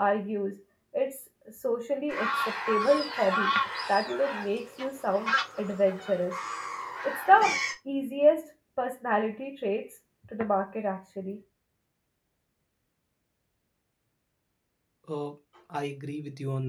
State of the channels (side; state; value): both; identical; correlation 1.00